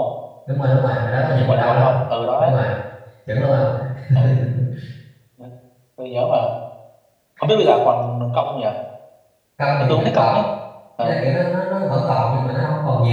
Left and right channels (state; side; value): identical; both; correlation 1.00